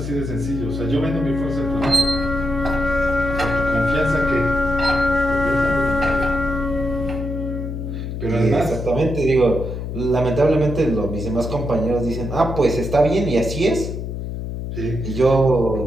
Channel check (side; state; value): left; noise; hum, 5 dB below the sound